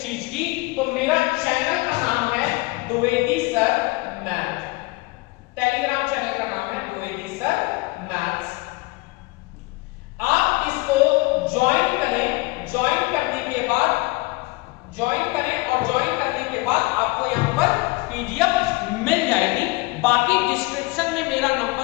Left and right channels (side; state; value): right; quieter; 23.6 dB